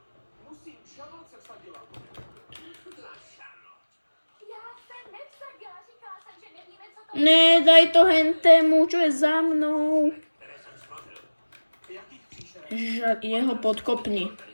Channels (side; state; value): both; inverted; correlation -1.00